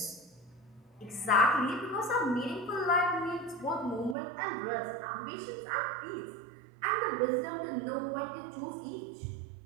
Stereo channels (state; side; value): drops out; left; at 4.2 s